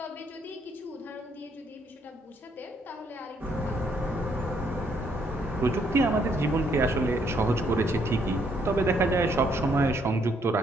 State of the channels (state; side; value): normal; both; correlation 0.71